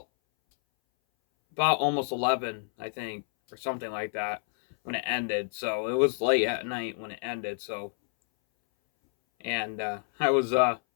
almost 11, I think, or something like that when it ended. So it was late at night when it ended. So, and I was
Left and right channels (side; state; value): right; silent; 59 dB below the other